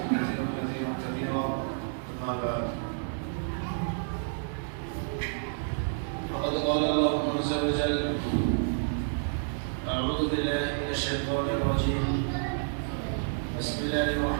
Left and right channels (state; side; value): silent; left; 58 dB below the other